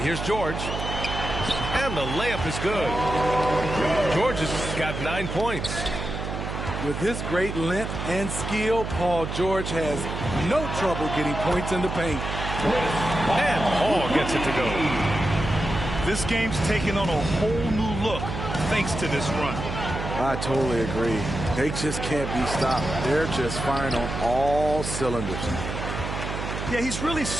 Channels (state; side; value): noise; right; hum, 5 dB below the sound